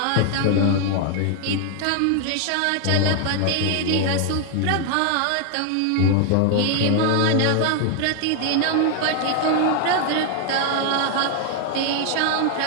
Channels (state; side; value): different; both; correlation 0.00